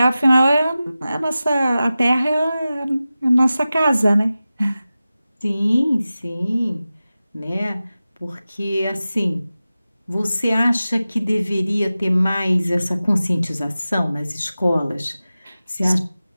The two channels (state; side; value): inverted; both; correlation -0.95